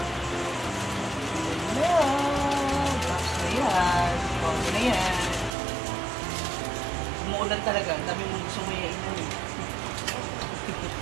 Umuulan talaga. Ang dami mong gusto mo iainan eh.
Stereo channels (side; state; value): left; drops out; at 5.6 s